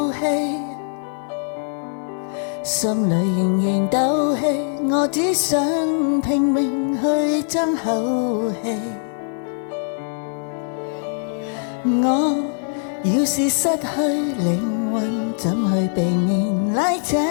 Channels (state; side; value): silent; right; 58 dB below the other